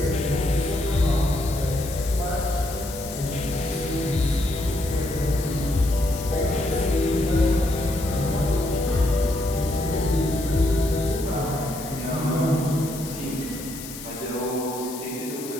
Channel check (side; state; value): left; noise; hiss, 12 dB below the sound